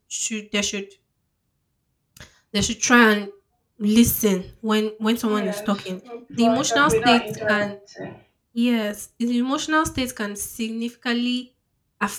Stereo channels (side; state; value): both; identical; correlation 1.00